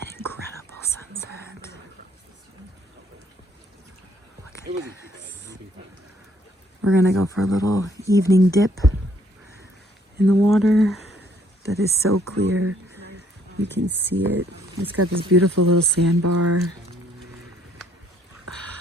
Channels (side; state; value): both; normal; correlation 0.65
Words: incredible sunset. Look at this. We're gonna go for a little evening dip in the water that is so clear. You can see it. It's got this beautiful little sandbar.